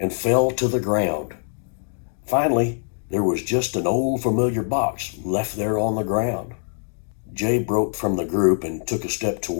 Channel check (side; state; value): right; silent; digital silence